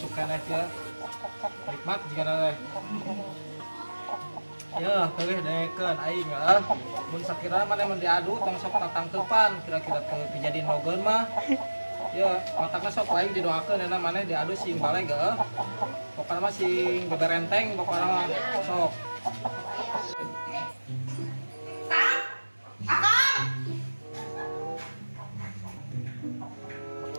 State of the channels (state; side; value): inverted; both; correlation -1.00